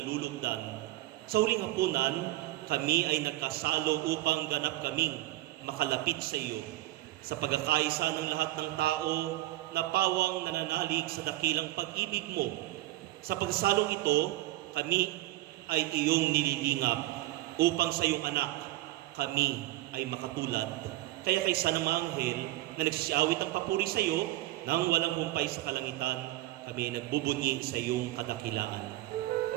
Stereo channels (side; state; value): left; quieter; 17.1 dB